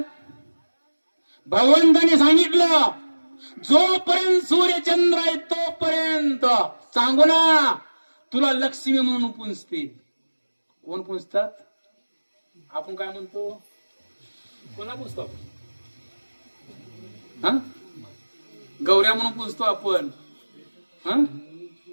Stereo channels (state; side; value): inverted; both; correlation -1.00